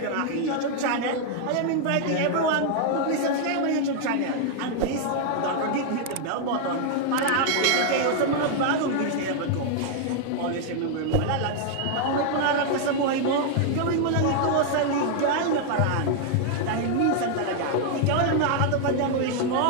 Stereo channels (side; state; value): both; different; correlation 0.00